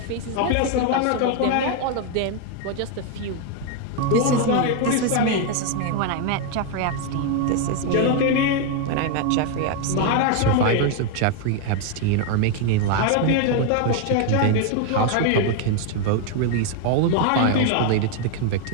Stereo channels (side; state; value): both; different; correlation 0.01